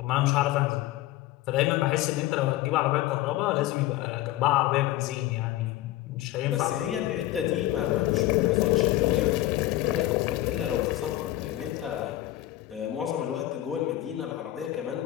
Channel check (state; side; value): quieter; right; 15.5 dB